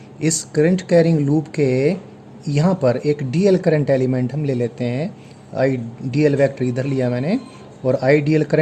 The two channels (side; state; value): both; identical; correlation 1.00